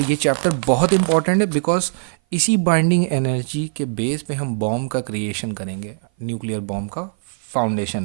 ये चैप्टर बहुत इंपॉर्टेंट है बिकॉज इसी बाइंडिंग एनर्जी के बेस पे हम बॉम्ब का क्रिएशन करेंगे, न्यूक्लियर बॉम्ब का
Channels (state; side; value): silent; left; 57 dB below the other